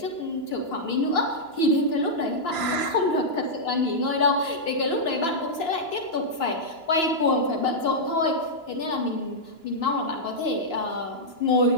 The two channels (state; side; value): late; right; 2.9 ms